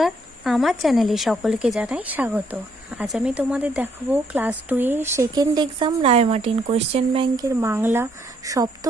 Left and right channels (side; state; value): both; normal; correlation 0.71